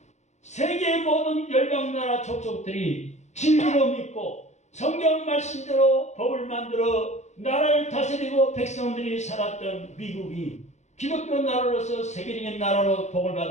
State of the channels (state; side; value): late; right; 0.33 ms